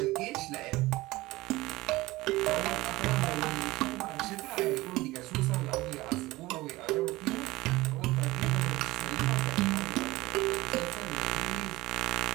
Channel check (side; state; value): left; quieter; 19.4 dB